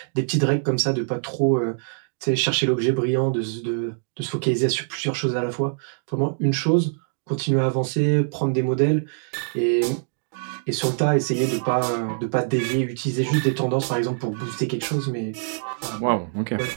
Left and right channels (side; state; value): left; silent; digital silence